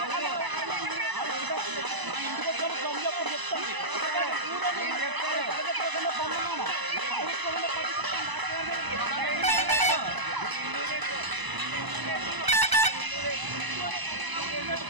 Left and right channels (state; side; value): late; left; 1.0 ms